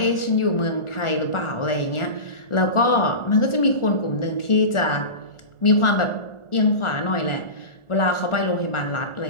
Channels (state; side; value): late; right; 1.4 ms